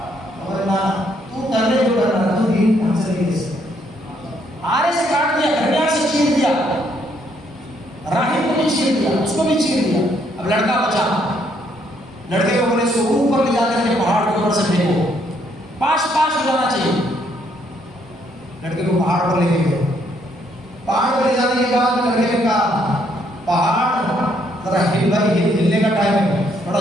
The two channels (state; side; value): normal; both; correlation 0.70